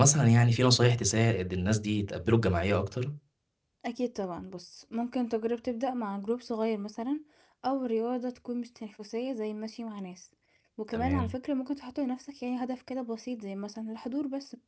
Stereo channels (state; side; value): identical; both; correlation 1.00